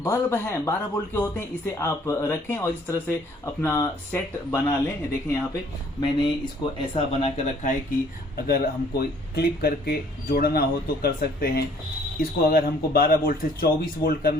बल्ब हैं 12 वोल्ट के होते हैं, इसे आप रखें और इस तरह से अपना सेट बना लें। देखें यहाँ पे मैंने इसको ऐसा बना कर रखा है कि अगर हमको क्लिप करके जोड़ना हो तो कर सकते हैं। इसको अगर हमको 12 वोल्ट से 24 वोल्ट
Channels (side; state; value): both; normal; correlation 0.59